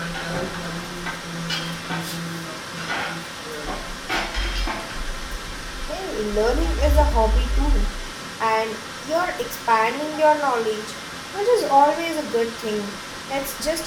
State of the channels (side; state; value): both; identical; correlation 1.00